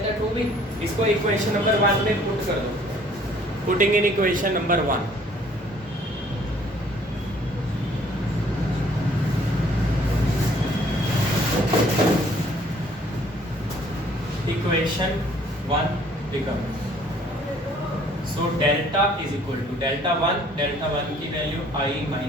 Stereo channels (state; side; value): normal; both; correlation 0.59